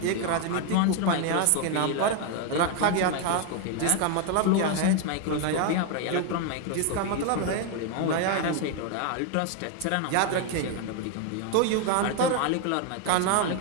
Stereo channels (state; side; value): different; both; correlation 0.01